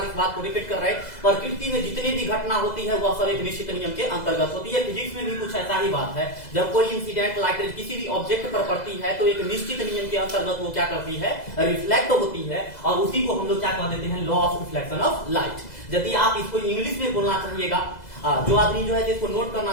इस बात को रिपीट कर रहे हैं, प्रकृति में जितनी भी घटना होती है वह सब एक निश्चित नियम के अंतर्गत होती है। फिजिक्स में भी कुछ ऐसा ही बात है, जब कोई इंसिडेंट लाइट रेज किसी भी ऑब्जेक्ट पर पड़ती है तो एक निश्चित नियम के अंतर्गत वो क्या करती है? रिफ्लेक्ट होती है, और उसी को हम लोग क्या कह देते हैं? Law of reflection of light. यदि आप इसको इंग्लिश में बोलना चाहिएगा, जो आदमी जो है इसको नोट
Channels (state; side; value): late; right; 2.0 ms